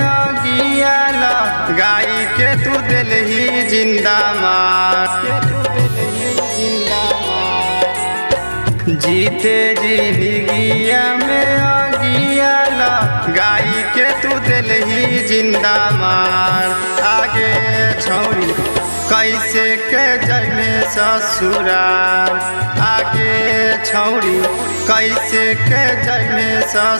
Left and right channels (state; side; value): inverted; both; correlation -1.00